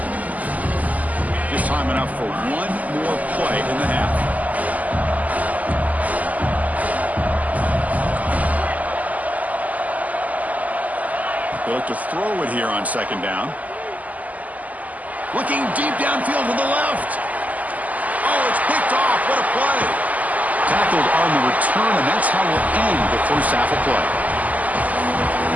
Just time enough for one more play in the half. They look to throw it here on second down. Looking deep downfield to the left. Oh, it's picked off. What a play. Tackled on the return, and that's how we'll end the first half of play.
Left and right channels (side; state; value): left; late; 0.077 ms